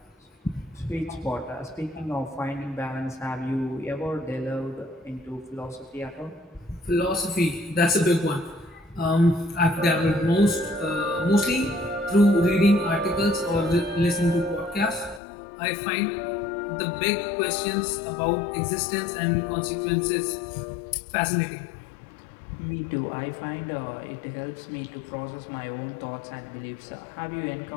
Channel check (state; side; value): drops out; right; at 15.2 s